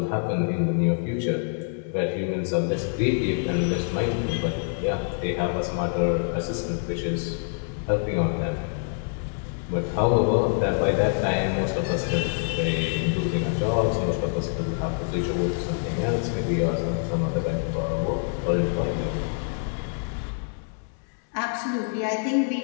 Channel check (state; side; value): silent; right; 61 dB below the other